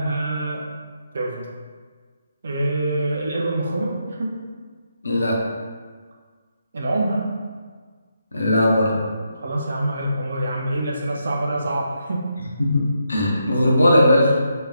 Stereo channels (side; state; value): both; inverted; correlation -0.81